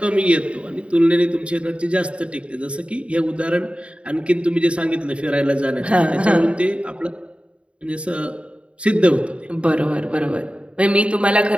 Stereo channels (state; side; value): late; left; 0.060 ms